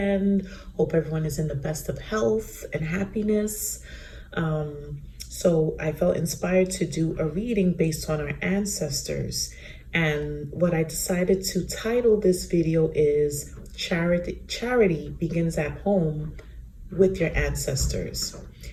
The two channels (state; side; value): identical; both; correlation 1.00